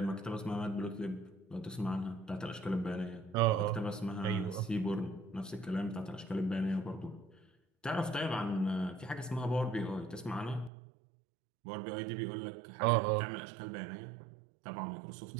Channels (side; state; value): left; drops out; at 10.7 s